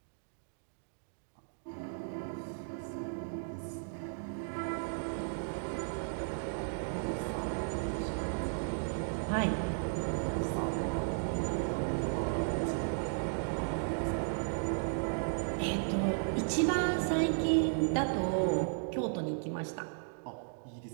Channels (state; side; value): silent; left; digital silence